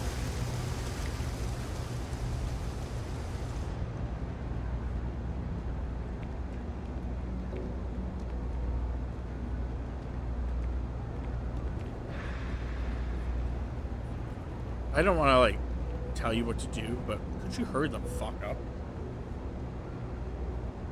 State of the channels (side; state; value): both; identical; correlation 1.00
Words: I don't want to, like, tell you what to do, but could you hurry the fuck up?